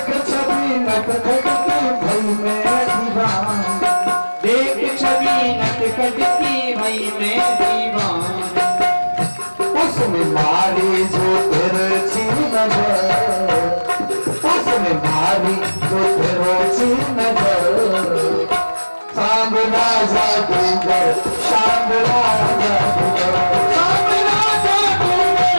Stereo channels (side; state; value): both; inverted; correlation -1.00